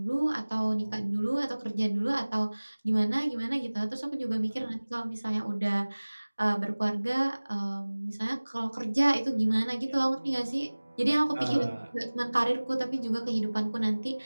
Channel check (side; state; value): both; inverted; correlation -1.00